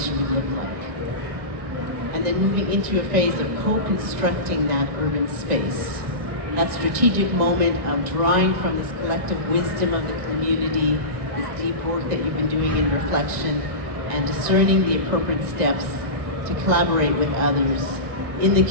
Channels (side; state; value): left; late; 1.6 ms